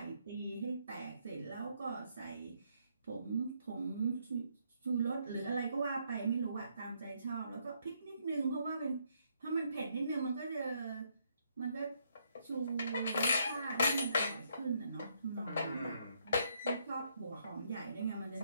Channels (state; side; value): inverted; both; correlation -0.73